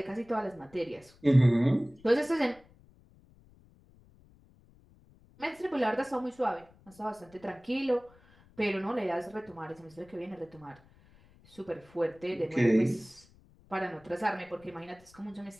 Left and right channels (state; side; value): noise; left; rumble, 27 dB below the sound